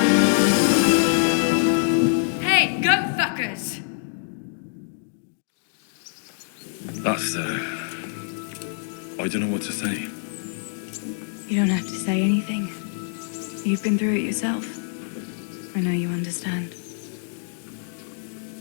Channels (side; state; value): right; silent; digital silence